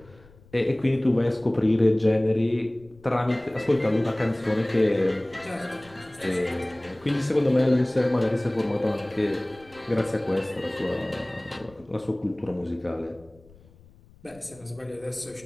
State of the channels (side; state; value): left; noise; rumble, 26 dB below the sound